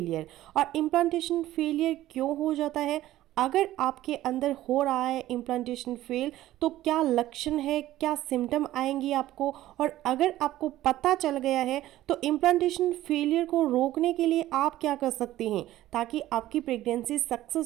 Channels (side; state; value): left; quieter; 14.7 dB